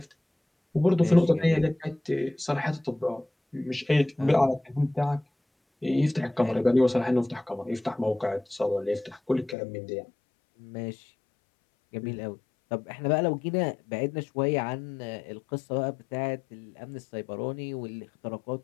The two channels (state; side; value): drops out; right; at 9.6 s